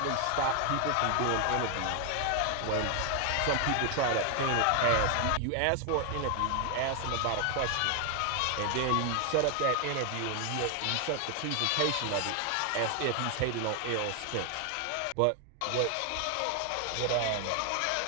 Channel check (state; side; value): different; both; correlation 0.00